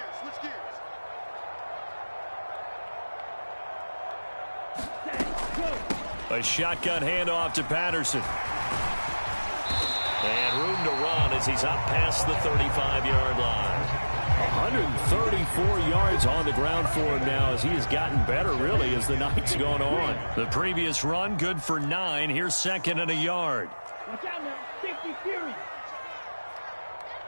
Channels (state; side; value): inverted; both; correlation -1.00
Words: Switch gears. A shotgun handoff to Patterson. And room to run as he's up past the 35-yard line. 134 yards on the ground for him now as he has gotten better, really, as the night's gone on. The previous run, good for 9. Here's 2nd and a yard. Watch out now. Safety fury.